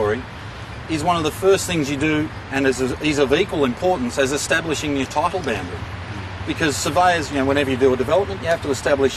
is one of the first things you do, and is of equal importance as establishing your title boundary. Because surveyors, whenever you do a development, you have to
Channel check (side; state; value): both; identical; correlation 1.00